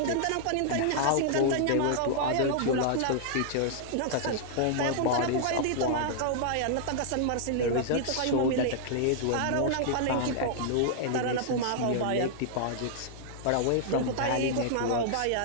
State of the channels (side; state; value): both; different; correlation -0.01